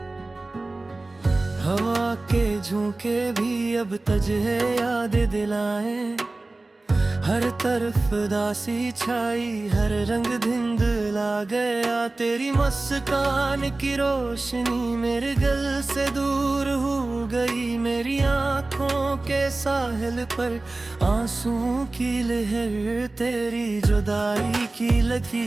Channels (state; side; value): quieter; left; 3.1 dB